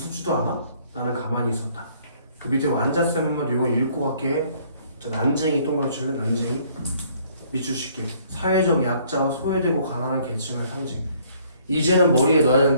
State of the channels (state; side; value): inverted; both; correlation -0.62